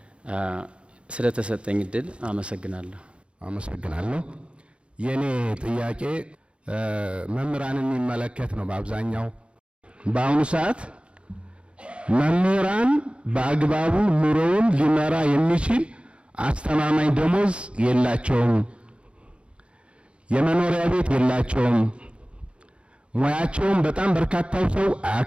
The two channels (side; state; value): left; late; 0.058 ms